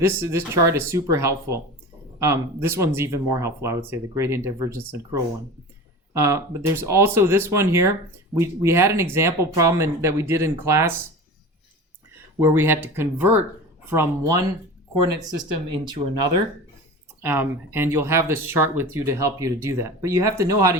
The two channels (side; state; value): both; normal; correlation 0.33